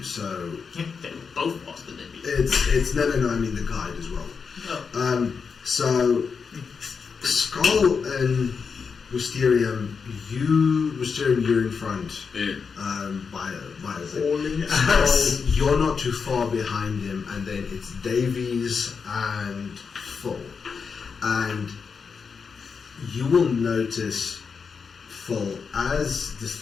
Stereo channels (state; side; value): quieter; right; 5.7 dB